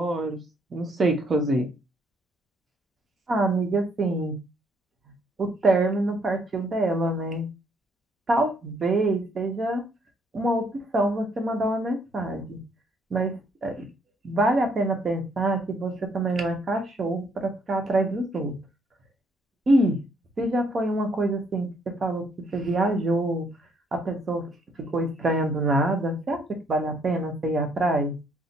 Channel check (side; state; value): both; normal; correlation 0.69